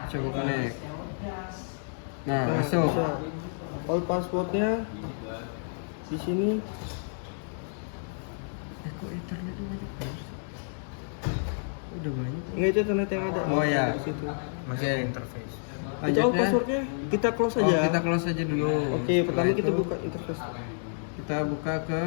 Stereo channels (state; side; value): silent; right; digital silence